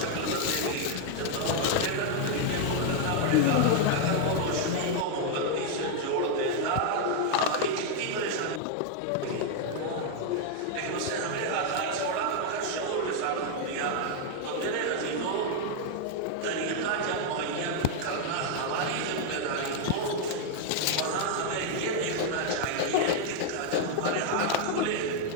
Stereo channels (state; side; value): different; both; correlation 0.00